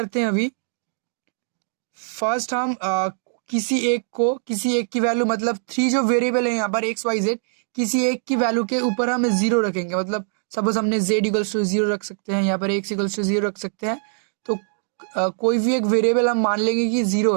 हैं, अभी फर्स्ट हम किसी एक की वैल्यू, मतलब 3 जो वेरिएबल है यहाँ पर XYZ, किसी एक की वैल्यू के ऊपर हम 0 रखेंगे। मतलब सपोज हमने Z=0 रख सकते हैं, यहाँ पर X=0 रख सकते हैं। तो कोई भी एक वेरिएबल हम मान लेंगे कि 0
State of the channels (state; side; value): silent; left; digital silence